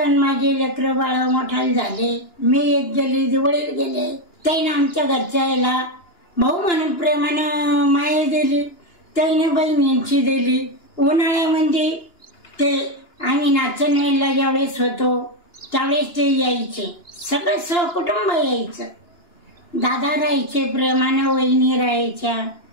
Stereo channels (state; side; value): late; right; 2.9 ms